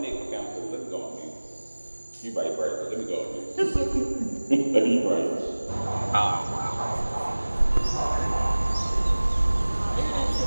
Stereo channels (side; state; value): both; inverted; correlation -1.00